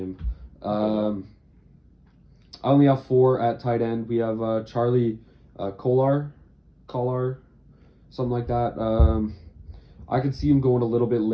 I only have 4 at tight end. We have Charlie Collar, something like that. I could see him going a little bit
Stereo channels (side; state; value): both; identical; correlation 1.00